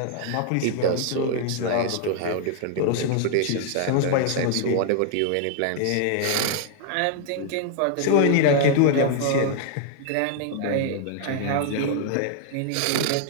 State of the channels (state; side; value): different; both; correlation 0.00